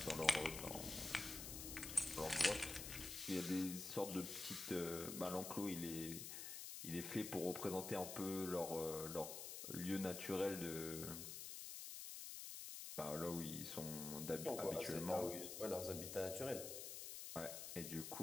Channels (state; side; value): noise; left; hiss, 6 dB below the sound